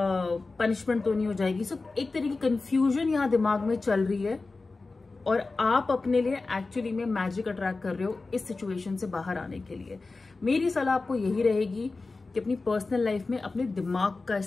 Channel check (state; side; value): quieter; right; 3.7 dB